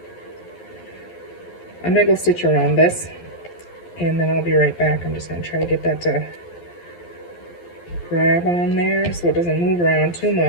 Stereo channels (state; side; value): late; right; 12 ms